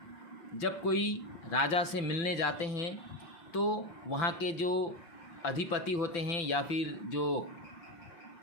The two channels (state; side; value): late; right; 5.9 ms